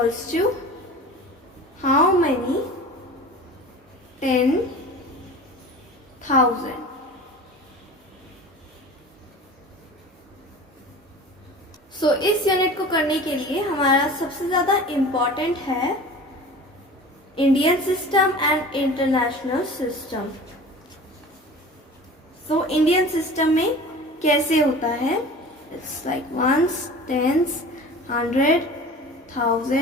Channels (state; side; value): normal; both; correlation 0.38